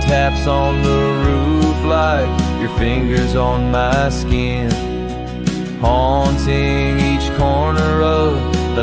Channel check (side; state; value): both; identical; correlation 1.00